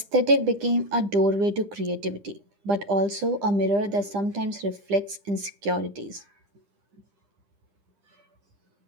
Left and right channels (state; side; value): late; left; 9.9 ms